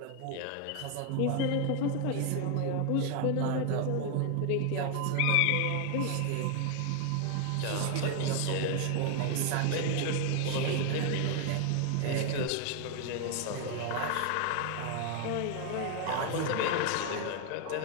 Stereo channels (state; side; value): different; both; correlation 0.00